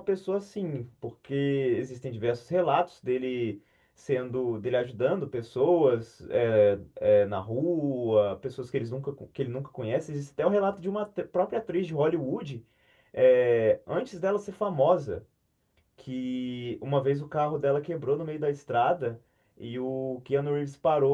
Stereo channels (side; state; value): both; identical; correlation 1.00